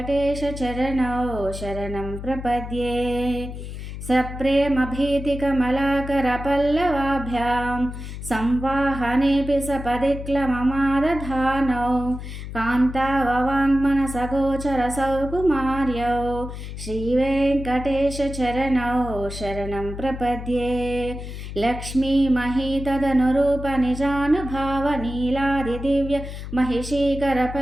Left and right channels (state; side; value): noise; left; hum, 9 dB below the sound